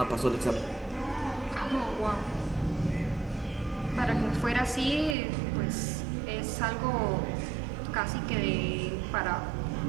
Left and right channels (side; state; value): left; drops out; at 5.2 s